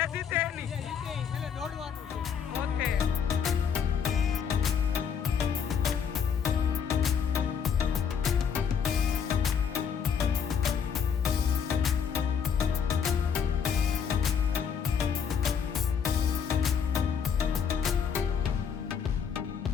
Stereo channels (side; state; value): right; quieter; 7.1 dB